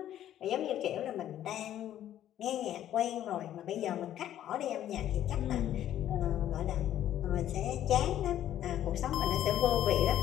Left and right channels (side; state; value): right; quieter; 11.7 dB